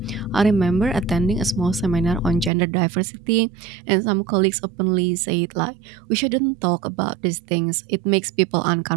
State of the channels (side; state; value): left; drops out; at 2.5 s